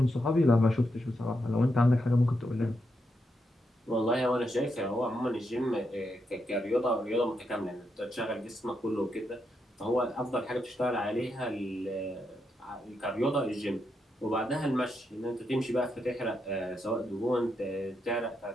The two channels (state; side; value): normal; both; correlation 0.82